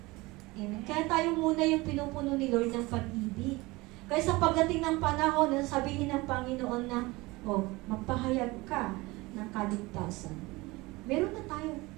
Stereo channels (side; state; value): left; quieter; 22.2 dB